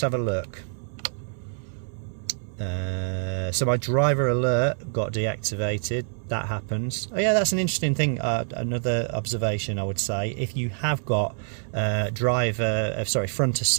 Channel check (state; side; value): silent; left; 61 dB below the other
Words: a look. So my driver alert got deactivated. That happens. Oh yeah, that's an interesting thing. Another observation I would say, if you have got front